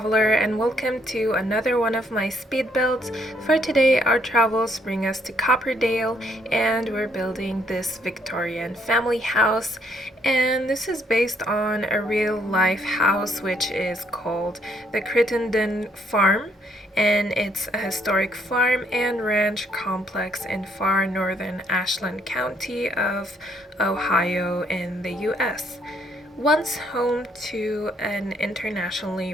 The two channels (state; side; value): normal; both; correlation 0.69